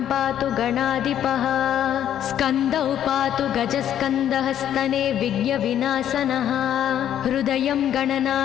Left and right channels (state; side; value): quieter; right; 10.5 dB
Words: पातु गणाधिपः स्कन्दौ पातु गजस्कन्दः स्तने विघ्नविनाशनः हृदयं